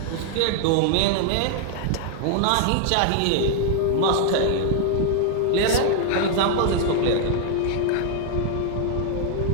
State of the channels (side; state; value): both; different; correlation 0.00